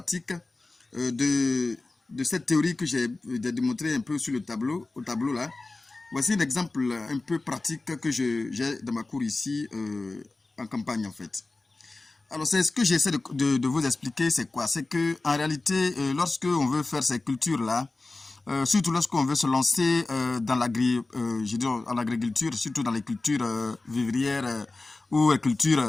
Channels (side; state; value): right; quieter; 3.3 dB